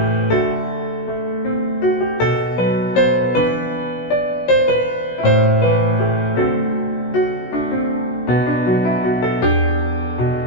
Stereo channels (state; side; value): late; right; 17 ms